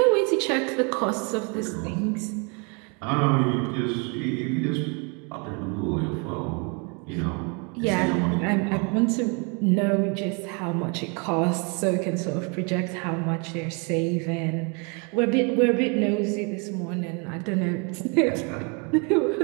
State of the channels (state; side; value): quieter; left; 33.5 dB